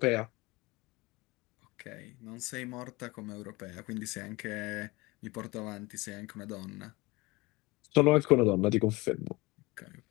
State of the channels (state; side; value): quieter; right; 23.1 dB